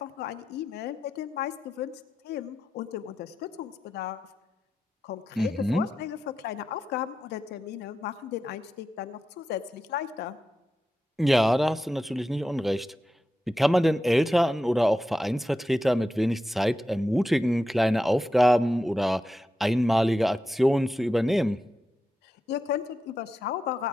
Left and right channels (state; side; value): normal; both; correlation 0.90